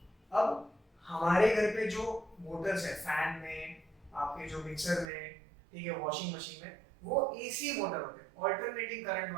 अब हमारे घर पे जो मोटर्स है, फैन में, आपके जो मिक्सर में, ठीक है, वॉशिंग मशीन में, वो एसी मोटर होते हैं, ऑल्टरनेटिंग करंट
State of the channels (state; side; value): drops out; left; at 5.1 s